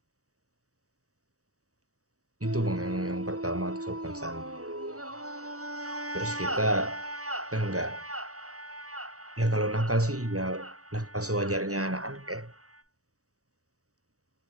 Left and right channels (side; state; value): left; late; 0.66 ms